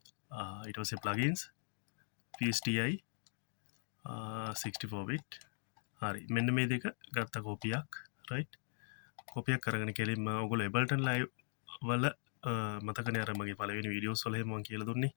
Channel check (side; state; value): right; silent; digital silence